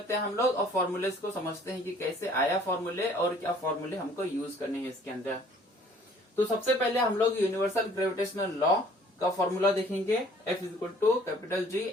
हैं हम लोग, और फॉर्मूलेस को समझते हैं कि कैसे आया फॉर्मूले और क्या फॉर्मूले हमको यूज करने हैं इसके अंदर। तो सबसे पहले हम लोग यूनिवर्सल ग्रेविटेशनल लॉ का फॉर्मूला देखेंगे। F equal to capital G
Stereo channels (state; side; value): normal; both; correlation 0.56